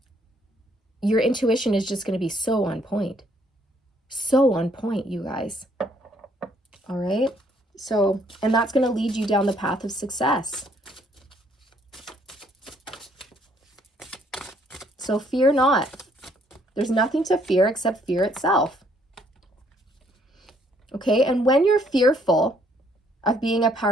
your intuition is just going to be so on point. So on point, you guys. All right. So, and that's going to lead you down the path of success. So fear not. There's nothing to fear except fear itself. Okay, and when you're fearful of being a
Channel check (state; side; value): normal; both; correlation 0.66